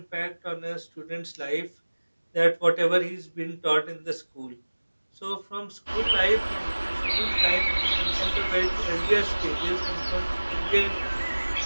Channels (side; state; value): both; inverted; correlation -1.00